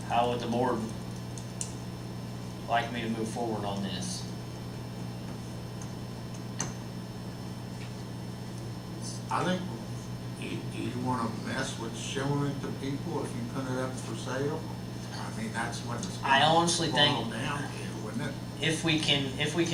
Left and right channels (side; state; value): both; identical; correlation 1.00